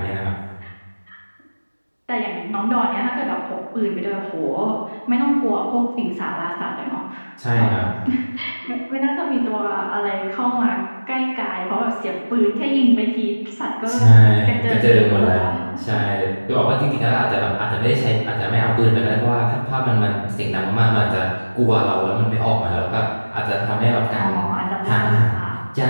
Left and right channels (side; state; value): both; inverted; correlation -1.00